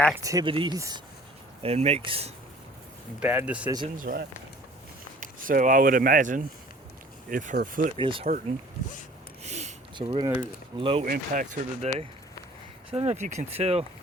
and makes bad decisions, right? So I would imagine if her foot is hurting, so we're gonna low impact her today. So I don't know if you can tell,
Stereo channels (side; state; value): both; normal; correlation 0.51